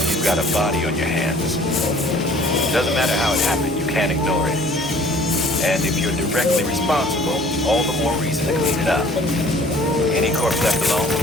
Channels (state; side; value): normal; both; correlation 0.53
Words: you've got a body on your hands. Doesn't matter how it happened, you can't ignore it. And if you're directly responsible, all the more reason to clean it up. Any corpse left alone